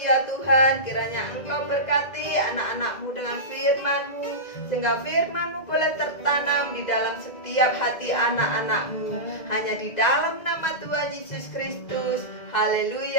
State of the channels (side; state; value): right; late; 2.0 ms